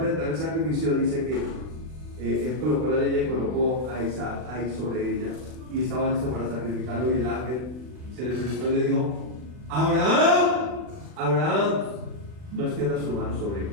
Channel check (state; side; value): late; left; 39 ms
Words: el sacrificio, dice que él colocó la leña y colocó a Isaac ahí sobre ella, y estaba listo para sacrificarlo. Y el ángel se le presentó y le dijo: Abraham. Abraham, no extiendas tu mano sobre